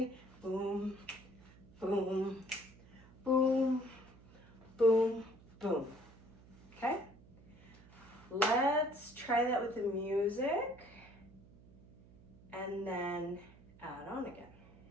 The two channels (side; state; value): right; noise; hum, 23 dB below the sound